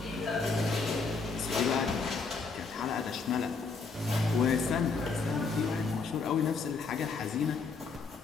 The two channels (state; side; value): quieter; right; 4.5 dB